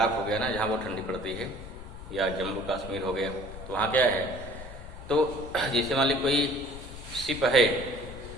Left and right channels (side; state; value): left; noise; rumble, 13 dB below the sound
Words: हो गया ना, जहाँ बहुत ठंडी पड़ती है, या जम्मू कश्मीर हो गया, तो वहाँ क्या है, तो जैसे मान ली कोई शिप है,